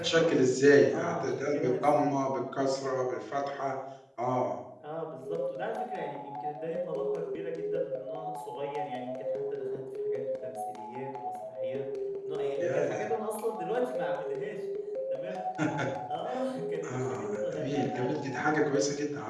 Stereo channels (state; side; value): identical; both; correlation 1.00